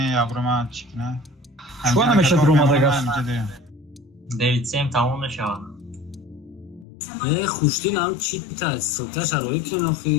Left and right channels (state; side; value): drops out; right; at 6.9 s